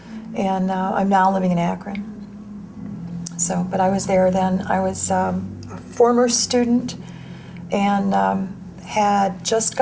And I'm now living in Akron. So, but I was there then. I was a former student and had just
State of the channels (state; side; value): identical; both; correlation 1.00